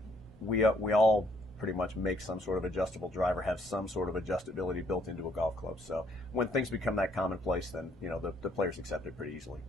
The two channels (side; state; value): both; normal; correlation 0.68